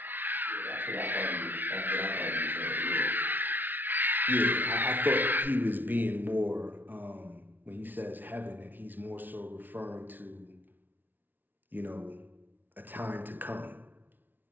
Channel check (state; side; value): late; left; 0.089 ms